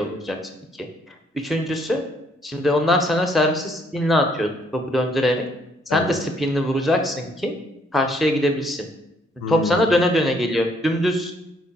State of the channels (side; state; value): both; normal; correlation 0.67